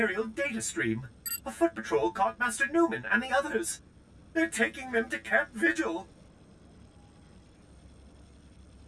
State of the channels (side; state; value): both; identical; correlation 1.00